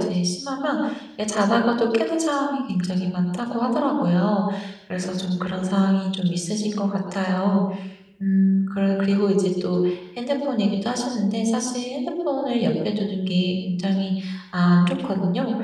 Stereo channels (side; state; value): both; identical; correlation 1.00